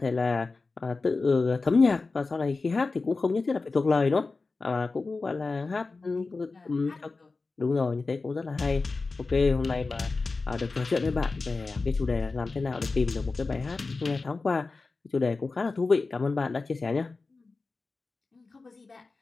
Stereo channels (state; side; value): quieter; right; 3.8 dB